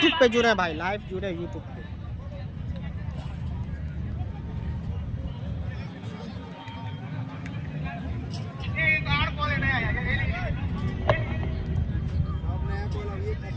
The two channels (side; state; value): both; identical; correlation 1.00